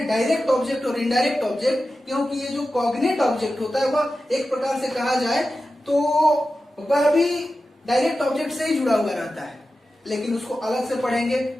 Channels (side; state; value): both; normal; correlation 0.93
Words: डायरेक्ट ऑब्जेक्ट और इनडायरेक्ट ऑब्जेक्ट। क्योंकि ये जो कॉग्निट ऑब्जेक्ट होता है वह एक प्रकार से कहा जाए तो वह भी डायरेक्ट ऑब्जेक्ट से ही जुड़ा हुआ रहता है, लेकिन उसको अलग से पढ़ेंगे